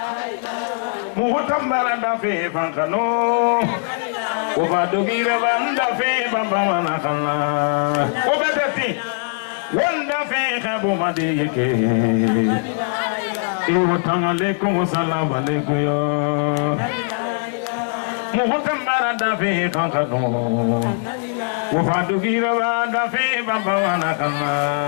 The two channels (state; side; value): silent; right; 61 dB below the other